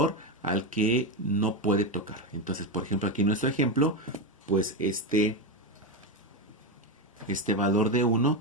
al que no puede tocar. Entonces, por ejemplo, aquí en nuestro ejemplo, pues este valor de 1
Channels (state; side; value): normal; both; correlation 0.11